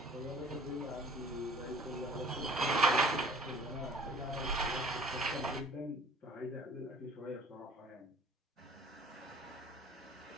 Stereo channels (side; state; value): both; normal; correlation 0.51